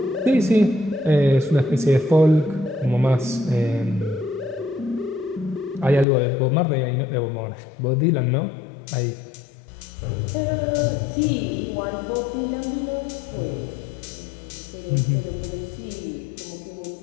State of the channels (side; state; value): right; drops out; at 6.1 s